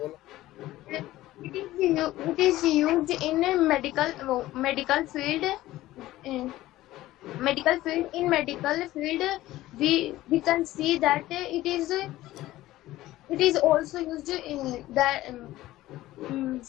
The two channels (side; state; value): right; quieter; 16.1 dB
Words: It is used in a medical field. In medical field, we can see that it is also used in the